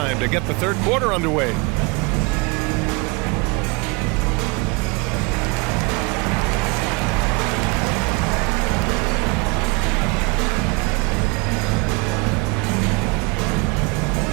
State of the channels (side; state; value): left; quieter; 28.3 dB